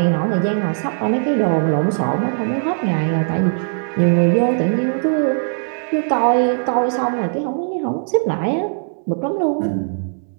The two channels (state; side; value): silent; left; digital silence